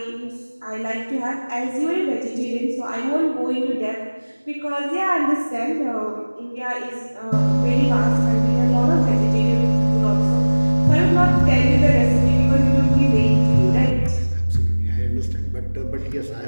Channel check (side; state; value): both; inverted; correlation -1.00